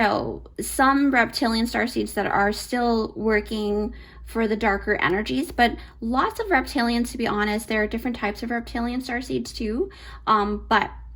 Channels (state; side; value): identical; both; correlation 1.00